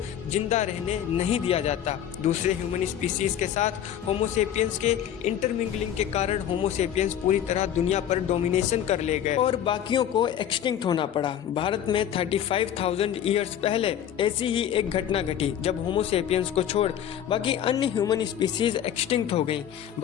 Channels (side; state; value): right; quieter; 10.1 dB